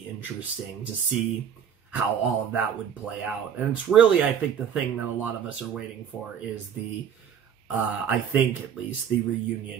to see how all of that would play out. And it's really, I think, the thing that a lot of us are waiting for is the, I think at least, the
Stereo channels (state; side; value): quieter; left; 8.1 dB